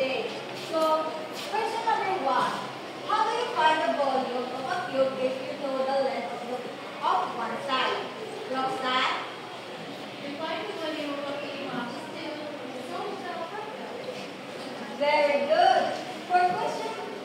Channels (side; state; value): both; identical; correlation 1.00